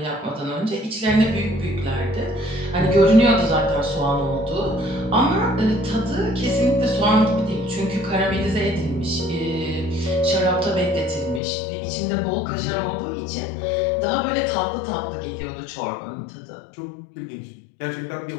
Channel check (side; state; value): right; drops out; at 11.4 s